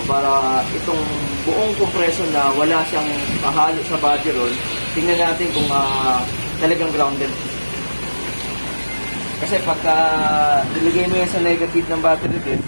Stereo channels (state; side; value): inverted; both; correlation -1.00